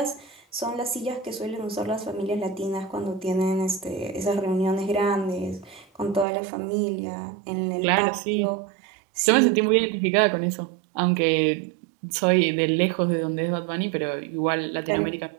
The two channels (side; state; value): left; drops out; at 6.2 s